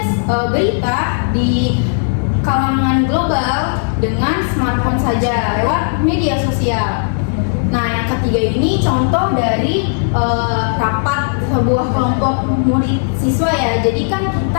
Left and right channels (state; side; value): silent; right; 63 dB below the other